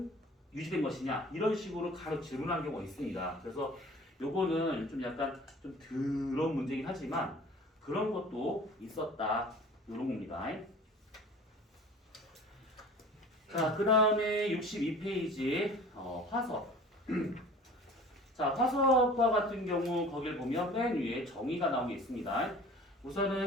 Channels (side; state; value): both; normal; correlation 0.44